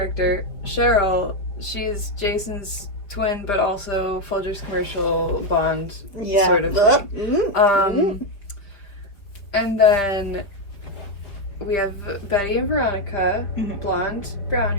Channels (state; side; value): late; right; 5.2 ms